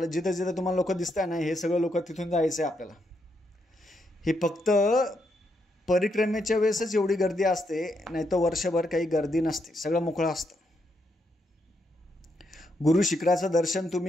जिथं जिथं तुम्हाला लोक दिसत आहे ना, हे सगळं लोक तिथून जायचं आहे आपल्याला. हे फक्त परिक्रमेच्या वेळेसच एवढी गर्दी असते, नाही तर वर्षभर काही गर्दी नसते. सगळं मोकळं असतं. गुरु शिखराचं दर्शन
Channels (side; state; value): both; normal; correlation 0.79